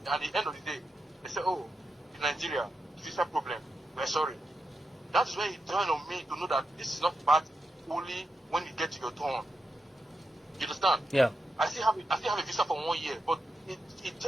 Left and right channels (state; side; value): normal; both; correlation 0.86